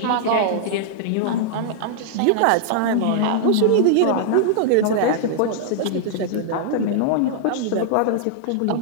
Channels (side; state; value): both; different; correlation -0.01